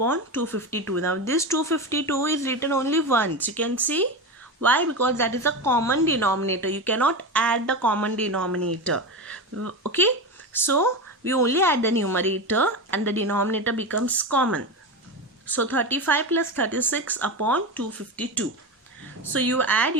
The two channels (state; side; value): normal; both; correlation 0.20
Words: 252. Now this 252 is written only once. You can see why? Because that is a common denominator. You cannot add the common denominator. Okay, so we only add the numerator and the denominator becomes common. So 35 plus 36 upon 252. So you add,